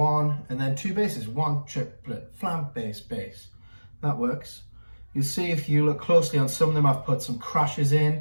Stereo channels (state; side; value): inverted; both; correlation -1.00